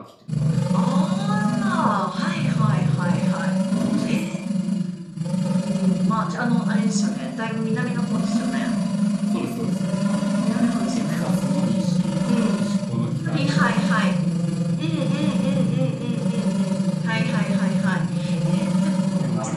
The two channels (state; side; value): identical; both; correlation 1.00